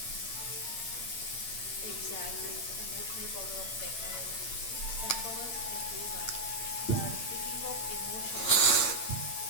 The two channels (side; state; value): right; late; 8.8 ms